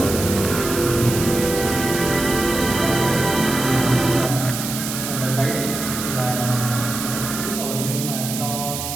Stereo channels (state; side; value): noise; right; hiss, 5 dB below the sound